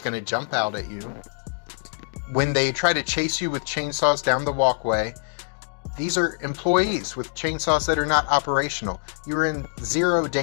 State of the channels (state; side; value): silent; right; digital silence